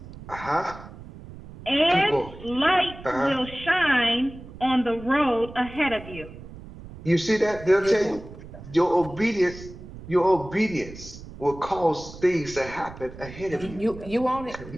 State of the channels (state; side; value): noise; right; rumble, 15 dB below the sound